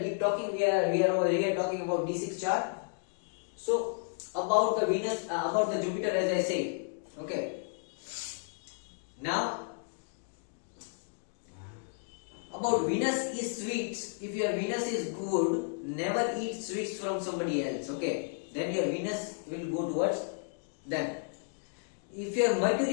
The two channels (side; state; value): right; silent; digital silence